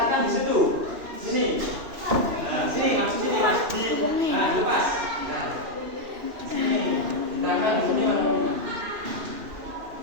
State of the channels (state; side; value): late; left; 2.9 ms